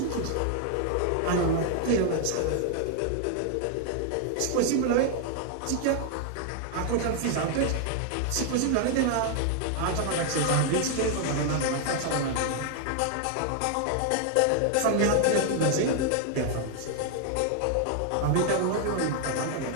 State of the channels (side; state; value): both; different; correlation 0.00